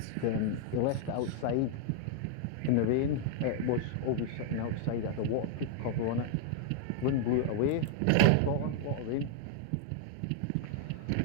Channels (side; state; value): both; different; correlation 0.00